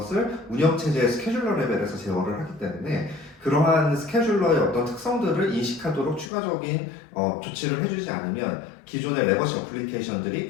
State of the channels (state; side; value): drops out; right; at 6.3 s